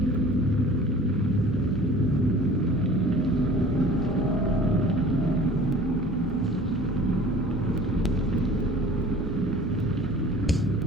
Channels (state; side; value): normal; both; correlation 0.45